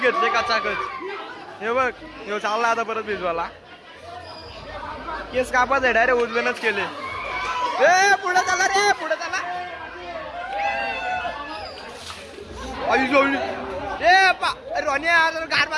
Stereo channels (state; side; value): identical; both; correlation 1.00